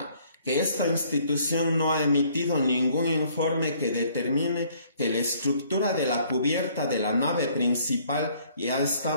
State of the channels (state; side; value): inverted; both; correlation -0.61